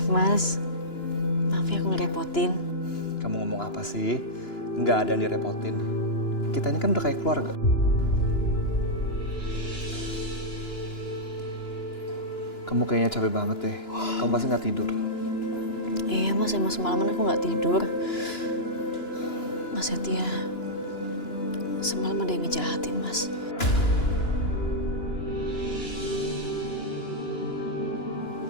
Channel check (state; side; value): late; right; 2.9 ms